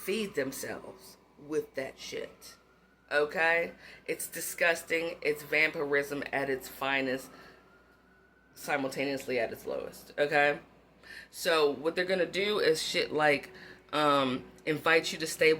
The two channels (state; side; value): identical; both; correlation 1.00